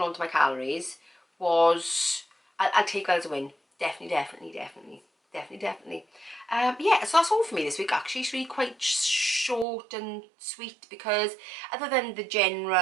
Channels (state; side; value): drops out; left; at 9.7 s